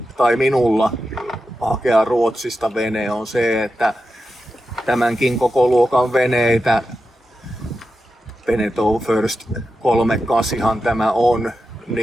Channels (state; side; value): normal; both; correlation 0.90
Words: tai minulla hakea Ruotsista vene on se, että tämänkin koko luokan veneitä, Beneteau First 38 tämä on,